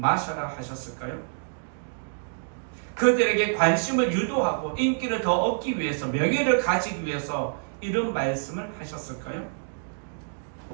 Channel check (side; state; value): left; silent; digital silence